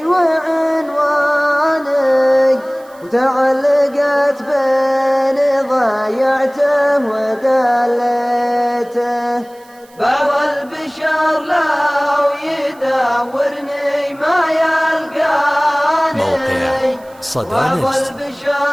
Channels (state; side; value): noise; right; hiss, 28 dB below the sound